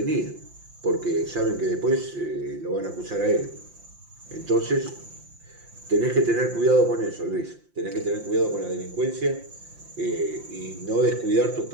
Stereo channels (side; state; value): left; late; 5.7 ms